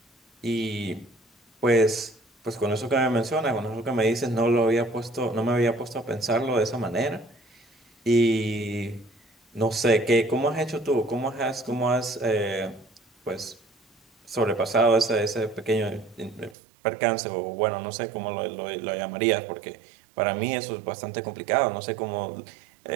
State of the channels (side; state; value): left; drops out; at 16.6 s